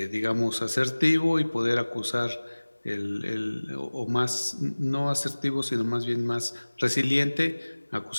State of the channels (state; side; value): inverted; both; correlation -1.00